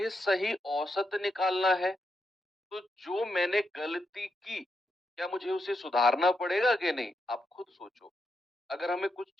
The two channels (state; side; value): normal; both; correlation 0.83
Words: सही औसत निकालना है तो जो मैंने गलती की, क्या मुझे उसे सुधारना पड़ेगा कि नहीं, आप खुद सोचो। अगर हमें कुछ